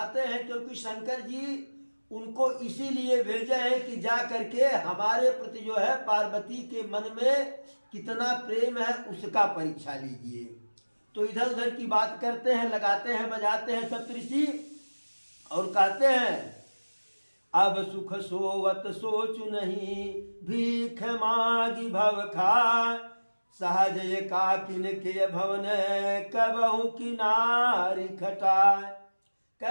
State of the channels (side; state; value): both; inverted; correlation -1.00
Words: हैं, क्योंकि शंकर जी उनको इसीलिए भेजे हैं कि जा करके हमारे प्रति जो है पार्वती के मन में कितना प्रेम है उसका परीक्षा लीजिए। तो इधर उधर की बात करते हैं, लगाते हैं, बजाते हैं सप्तऋषि, और कहते हैं अब सुख सोवत सोचु नहीं, भीख मागी भव खाय। सहज एकाकिन के भवन कबहु किनारी खटाय।